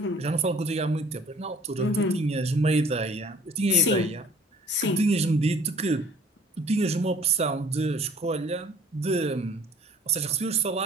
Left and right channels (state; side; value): normal; both; correlation 0.53